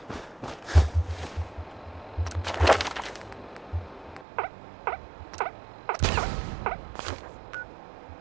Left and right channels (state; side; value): drops out; left; at 4.2 s